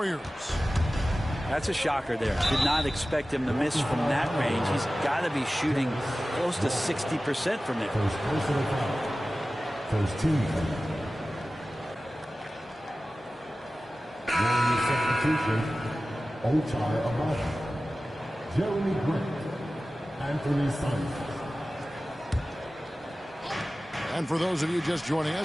That's a shocker there. Did not expect him to miss from that range. He's got to be shooting close to 60% from there. First team. Substitution, Ochai Amada, Jeremy Grant, Anthony Simons. And for those of you just joining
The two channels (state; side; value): normal; both; correlation 0.96